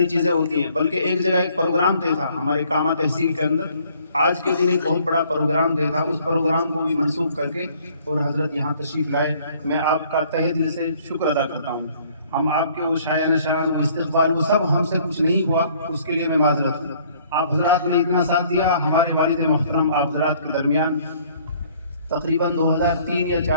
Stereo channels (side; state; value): both; inverted; correlation -0.59